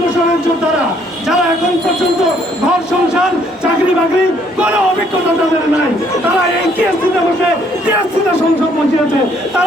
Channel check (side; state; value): both; normal; correlation 0.66